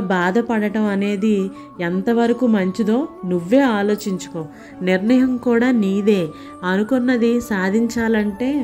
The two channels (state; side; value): identical; both; correlation 1.00